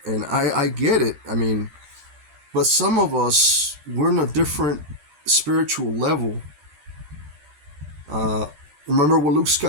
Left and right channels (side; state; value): left; late; 13 ms